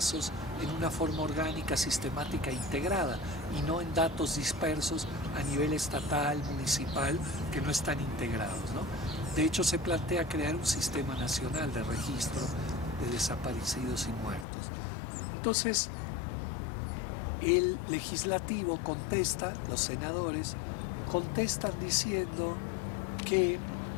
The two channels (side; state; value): right; drops out; at 14.5 s